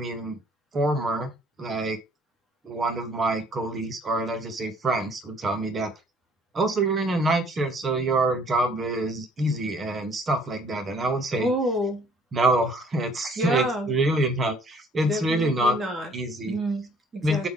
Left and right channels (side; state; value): both; normal; correlation 0.58